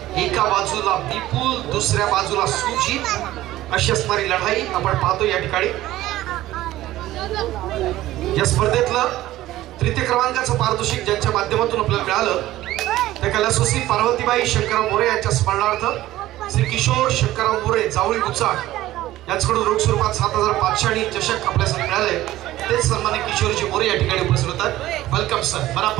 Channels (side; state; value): left; quieter; 15.4 dB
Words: एका बाजूला विपुल, दुसऱ्या बाजूला सुजित अशी असणारी लढाई आपण पाहतो या ठिकाणी. या स्पर्धेतलं तृतीय क्रमांकाचं पारितोषिक ज्यांच्या माध्यमातून आपल्याला मिळालं त्या कैलासवासी पार्वतीबाई शंकरराव मोरे यांच्या स्मरणार्थ श्री किशोर शंकरराव मोरे जावळी गुचाळ यांच्याकडून रोख स्वरूपात 7,500 आणि चषक आपल्यासाठी मिळाले. तेच सन्मान्य किशोरजी मोरे या ठिकाणी उपस्थित होतात. वेलकम सर,